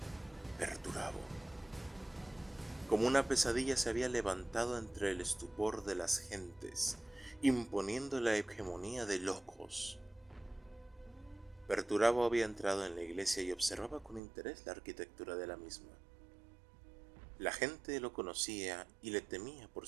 Perturabo. Como una pesadilla se había levantado entre el estupor de las gentes, imponiendo la hegemonía de locos. Perturabo había entrado en la iglesia y observaba con interés la arquitectura de la misma. La gente lo conocía y le temía por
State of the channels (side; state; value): left; drops out; at 14.2 s